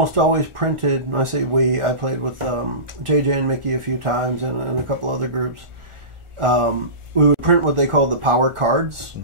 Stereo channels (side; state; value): left; late; 1.4 ms